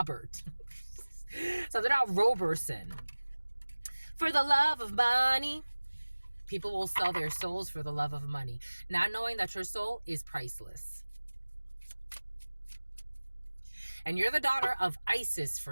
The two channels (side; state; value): both; inverted; correlation -1.00